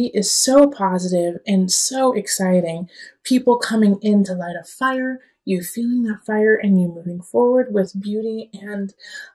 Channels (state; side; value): identical; both; correlation 1.00